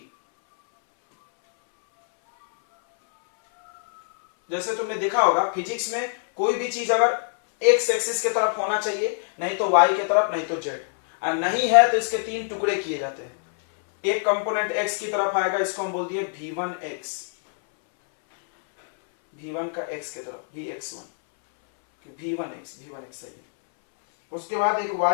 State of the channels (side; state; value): right; silent; 62 dB below the other